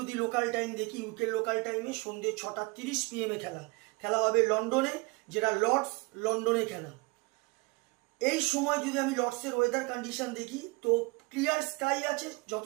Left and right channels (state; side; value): quieter; left; 26.1 dB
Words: লোকাল টাইম দেখি, ইউকের লোকাল টাইমে সন্ধ্যে 6:30 PM এ খেলা। খেলা হবে লন্ডনে, যেটা লর্ডস লন্ডনে খেলা। এই সময় যদি আমি লর্ডসের ওয়েদার কন্ডিশন দেখি, তো ক্লিয়ার স্কাই আছে,